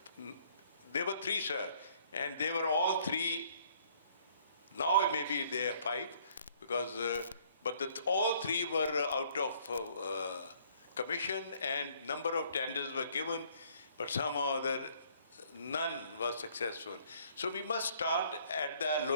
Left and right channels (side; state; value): both; inverted; correlation -0.61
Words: there were three, sir, and they were all three, now maybe they are five, because, but all three were out of commission and number of tenders were given, but somehow or other none was successful. So we must start at the